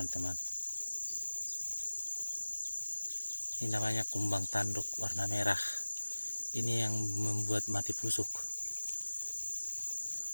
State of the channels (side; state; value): both; inverted; correlation -1.00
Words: Ini namanya kumbang tanduk warna merah. Ini yang membuat mati pusuk.